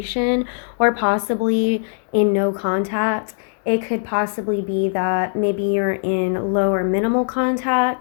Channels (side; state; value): right; silent; digital silence